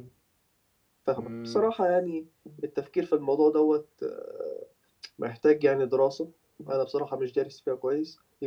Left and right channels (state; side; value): identical; both; correlation 1.00